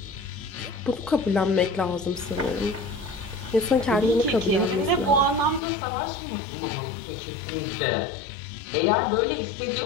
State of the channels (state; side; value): drops out; right; at 5.6 s